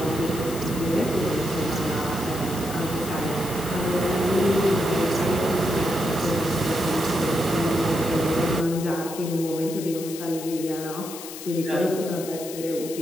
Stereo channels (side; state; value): left; noise; hiss, 12 dB below the sound